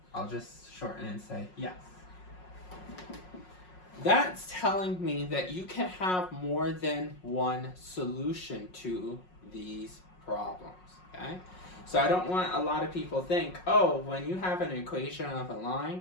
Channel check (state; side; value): late; right; 5.5 ms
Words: I'll just shorten and say yes. That's telling me that you can have more than one solution to these problems, okay? So I don't want a lot of people think, oh, when you have an equation of a